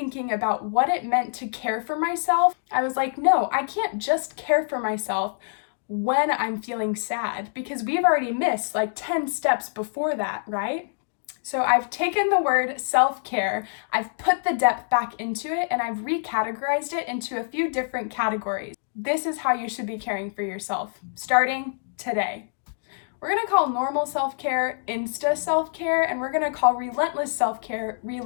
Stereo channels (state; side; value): silent; right; digital silence